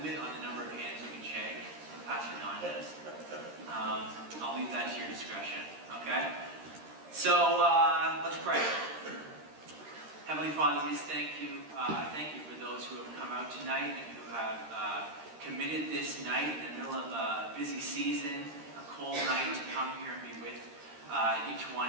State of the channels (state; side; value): late; left; 13 ms